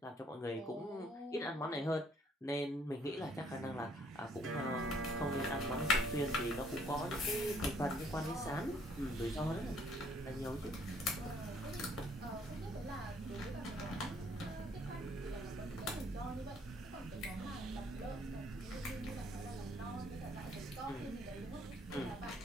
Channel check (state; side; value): normal; both; correlation 0.64